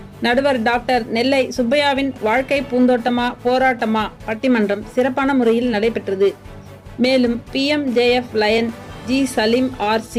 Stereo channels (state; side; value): identical; both; correlation 1.00